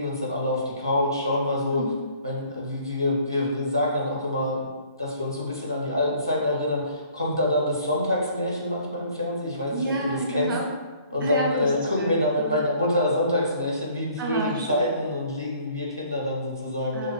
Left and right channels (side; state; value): both; inverted; correlation -0.56